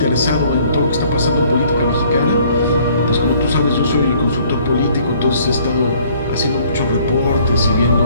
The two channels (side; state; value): both; inverted; correlation -0.59